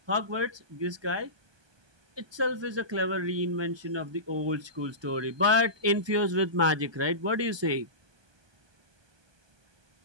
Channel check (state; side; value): late; left; 1.2 ms